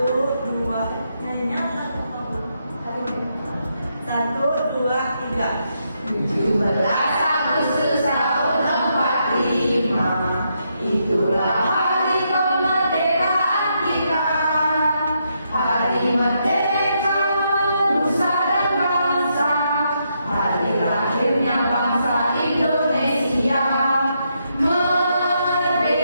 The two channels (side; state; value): both; inverted; correlation -0.79